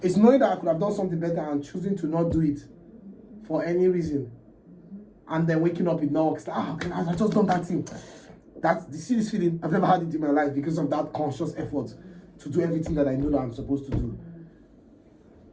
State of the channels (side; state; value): both; identical; correlation 1.00